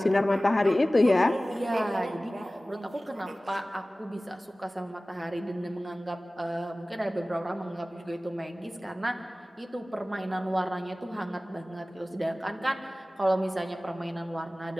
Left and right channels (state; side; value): normal; both; correlation 0.97